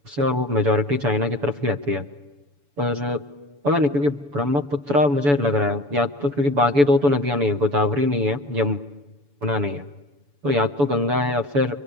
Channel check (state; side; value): late; left; 7.0 ms